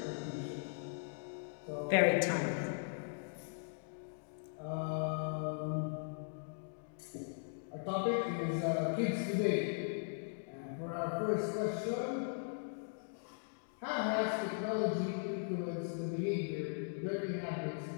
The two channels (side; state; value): right; silent; digital silence